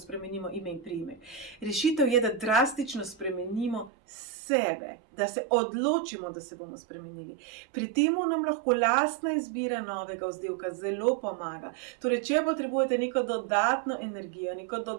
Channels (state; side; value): drops out; left; at 3.9 s